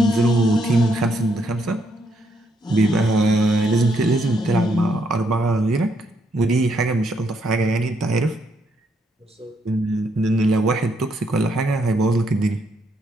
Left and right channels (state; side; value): normal; both; correlation 0.74